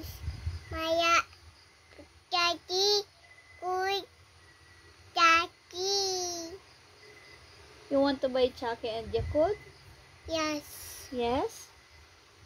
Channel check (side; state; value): both; identical; correlation 1.00